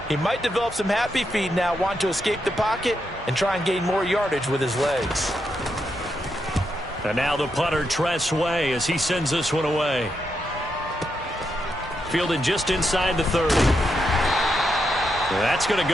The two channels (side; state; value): both; normal; correlation 0.82